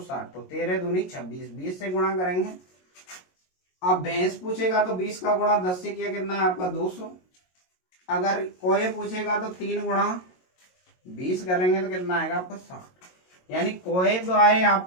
तो 13 दूनी 26, 20 से गुणा करेंगे। अब भैंस पूछेगा तो 20 का गुणा 10 से किया कितना है आपका 200। अगर कोए पूछेगा तो 3 गुणा 20 करेंगे तो कितना आएगा आपका 60। यानी कोए तो आए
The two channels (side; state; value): right; late; 22 ms